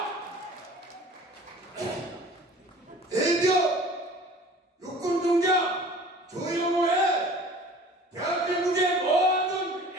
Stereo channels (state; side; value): normal; both; correlation 0.46